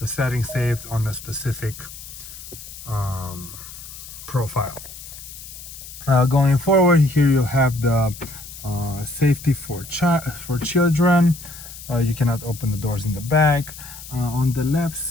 setting saved on a specific profile. Going forward, here you have the safety for children. You cannot open the doors in the back. On the left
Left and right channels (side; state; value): left; noise; hiss, 14 dB below the sound